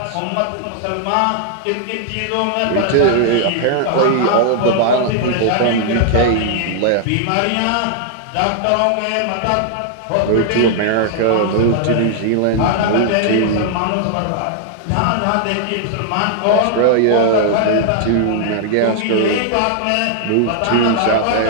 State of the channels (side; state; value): both; different; correlation 0.00